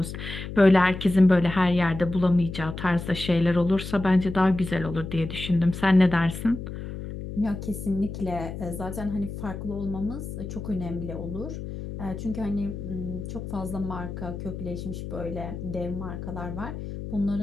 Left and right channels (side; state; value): left; noise; hum, 8 dB below the sound